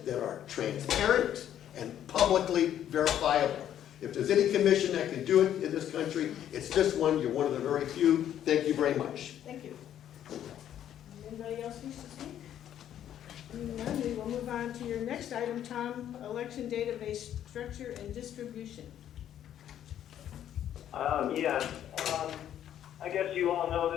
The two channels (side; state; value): right; quieter; 10.7 dB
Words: that are transparent and publicly verifiable. If there's any commission that can do it in this country, it's this one. You're one of the very few. Thank you very much. Thank you. Anybody else wish to speak? None, we will move on to your next item, Tom, election database structure and distribution. I guess you all know